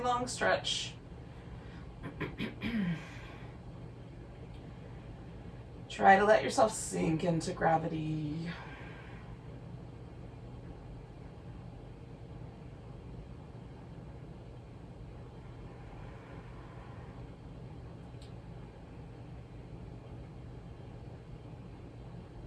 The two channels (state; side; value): identical; both; correlation 1.00